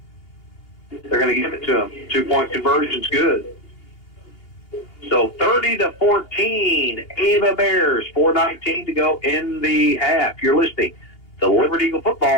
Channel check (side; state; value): right; late; 2.8 ms